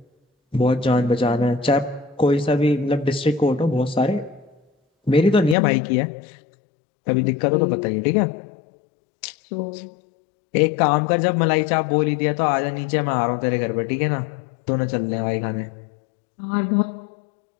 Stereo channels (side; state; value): right; drops out; at 5.6 s